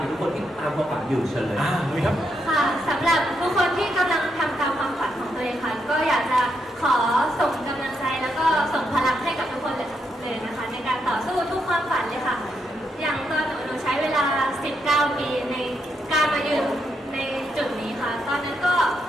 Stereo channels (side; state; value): both; normal; correlation 0.80